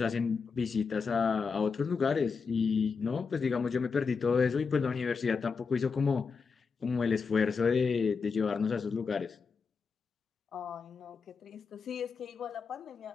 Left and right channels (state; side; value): quieter; right; 5.3 dB